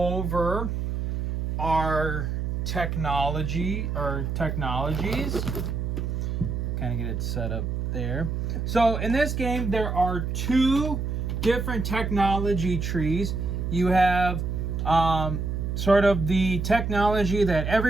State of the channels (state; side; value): noise; right; hum, 2 dB below the sound